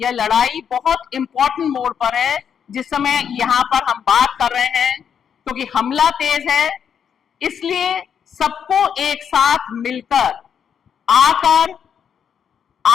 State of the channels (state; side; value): quieter; right; 7.8 dB